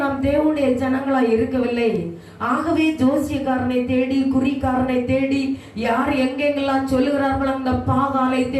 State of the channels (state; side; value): identical; both; correlation 1.00